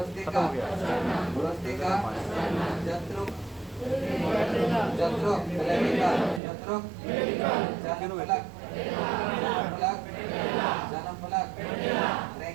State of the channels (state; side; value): drops out; left; at 6.4 s